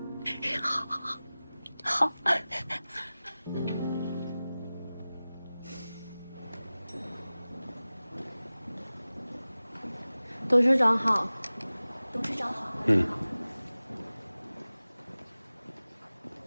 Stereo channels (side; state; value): both; inverted; correlation -0.97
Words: 好。董事长好。董事长好。